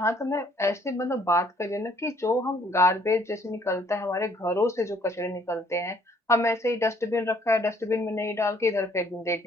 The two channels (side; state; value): both; normal; correlation 0.62